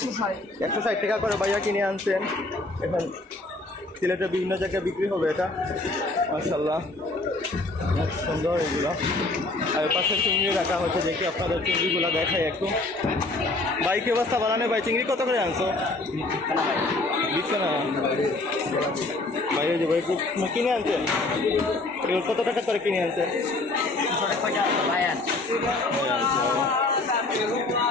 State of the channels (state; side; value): quieter; right; 3.0 dB